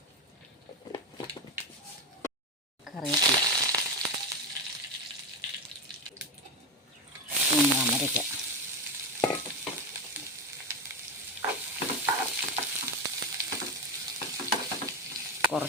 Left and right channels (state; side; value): normal; both; correlation 0.14